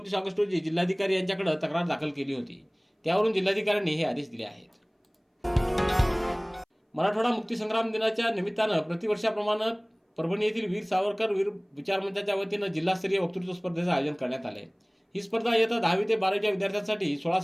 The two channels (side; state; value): both; identical; correlation 1.00